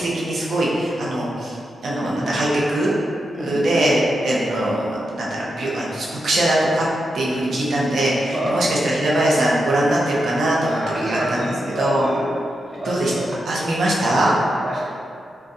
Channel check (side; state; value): both; normal; correlation 0.86